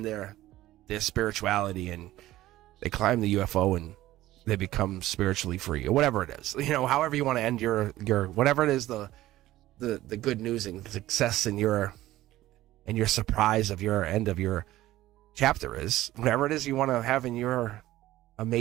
their spirituality and they climb the UFO and they become spiritually free or whatever it is. However you want to end your whatever it is, the good news and success and your surprise of your end of your chapter is, whatever it is you want to have in your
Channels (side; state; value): left; quieter; 15.5 dB